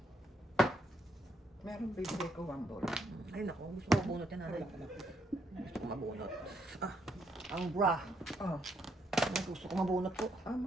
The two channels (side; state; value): both; normal; correlation 0.74